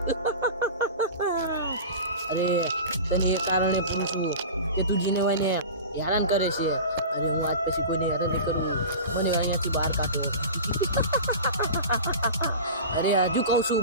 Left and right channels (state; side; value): inverted; both; correlation -0.33